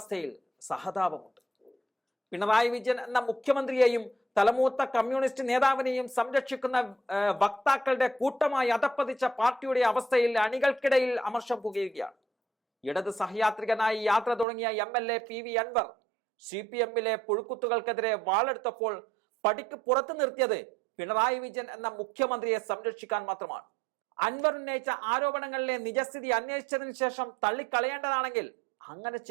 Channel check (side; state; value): left; drops out; at 14.5 s